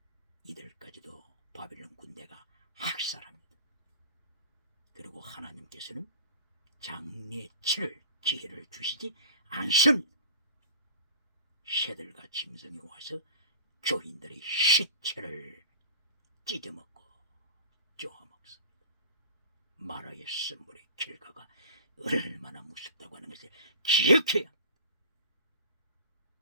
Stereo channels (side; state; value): both; inverted; correlation -0.41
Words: 이들까지도 바벨론 군대가 학살합니다. 그리고 하나님께서는 장례 치를 기회를 주시지 않습니다. 새들과 짐승이 와서 교인들의 시체를 찢어먹고 쪼아먹습니다. 마라의 선물의 결과가 얼마나 무섭다고 하는 것을 기억해야 합니다.